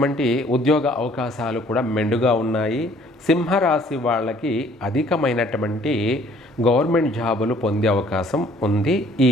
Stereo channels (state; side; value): normal; both; correlation 0.58